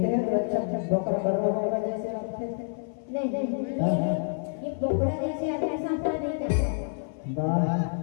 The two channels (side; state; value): right; silent; 58 dB below the other